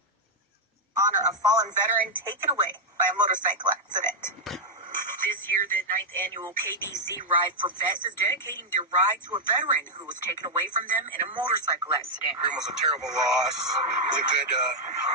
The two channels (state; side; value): normal; both; correlation -0.02